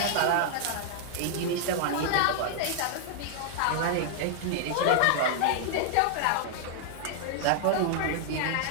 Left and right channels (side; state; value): both; different; correlation -0.01